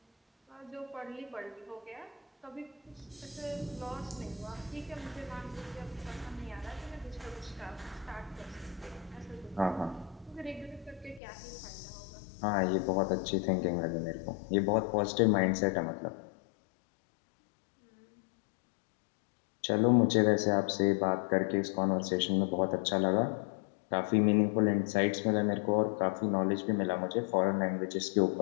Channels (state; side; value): drops out; right; at 11.2 s